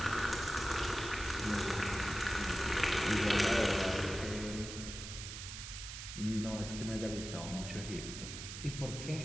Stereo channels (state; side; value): noise; right; hiss, 9 dB below the sound